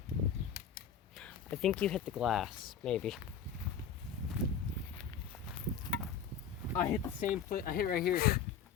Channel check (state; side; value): quieter; right; 7.3 dB